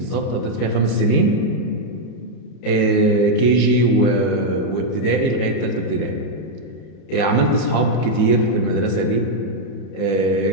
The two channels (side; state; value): right; late; 31 ms